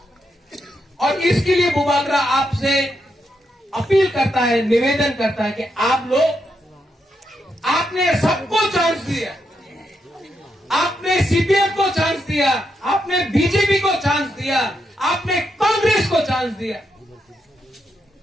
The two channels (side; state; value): both; normal; correlation 0.82